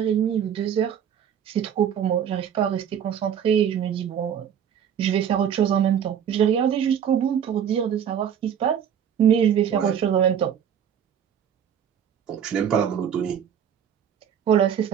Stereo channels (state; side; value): quieter; left; 8.7 dB